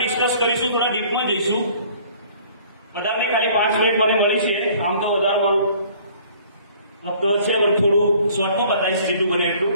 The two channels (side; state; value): both; inverted; correlation -0.55